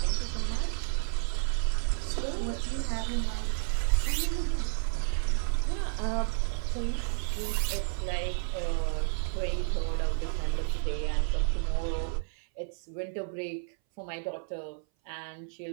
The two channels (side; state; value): left; silent; 57 dB below the other